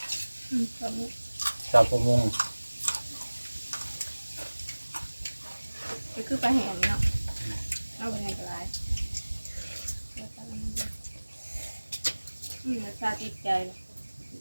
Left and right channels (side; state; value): both; inverted; correlation -1.00